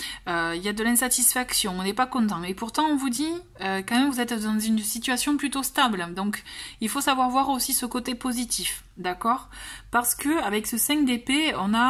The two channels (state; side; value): identical; both; correlation 1.00